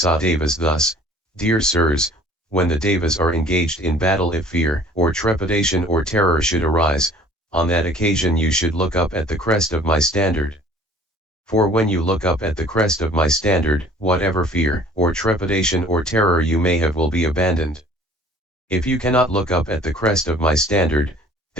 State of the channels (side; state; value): both; normal; correlation 0.51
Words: devas thus, Dear sirs, when the devas are engaged in battle, if fear or trepidation or terror should arise, on that occasion you should look up at the crest of my standard. For when you look up at the crest of my standard, whatever fear or trepidation or terror you may have will be abandoned. If you cannot look up at the crest of my standard,